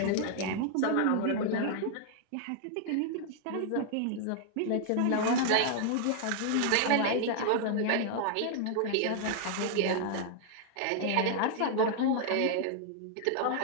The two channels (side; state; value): both; different; correlation 0.00